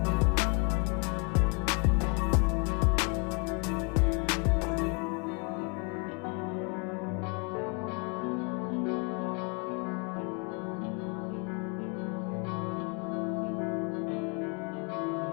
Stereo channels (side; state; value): right; quieter; 34.3 dB